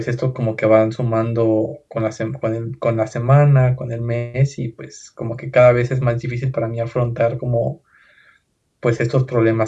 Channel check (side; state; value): both; identical; correlation 1.00